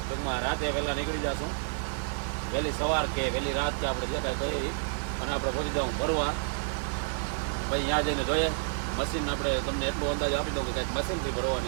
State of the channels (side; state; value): left; silent; 56 dB below the other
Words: ટૂંકમાં રાતે પહેલાં નીકળી જશું. વહેલી સવાર કે વહેલી રાત કે આપણે જે કાંઈ કરી અને આપણે પહોંચી જવું ભરવા. ભાઈ ત્યાં જઈને જોઈએ મશીન આપણે તમને એટલો અંદાજ આપી દઉં કે કાંઈક મશીનરી